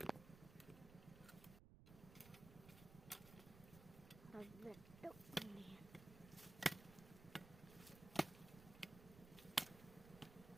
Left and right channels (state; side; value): noise; right; rumble, 15 dB below the sound